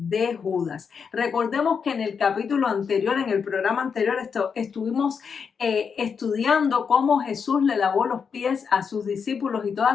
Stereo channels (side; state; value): right; quieter; 6.2 dB